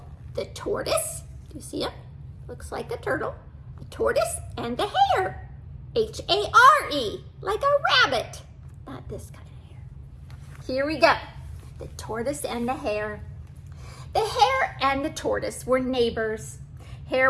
The Tortoise. Do you see him? Looks like a turtle. The Tortoise and the Hare. H-A-R-E, like a rabbit. Not this kind of hare. Here we go. The Tortoise and the Hare. The Hare and the Tortoise were neighbors. Hare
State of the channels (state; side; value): identical; both; correlation 1.00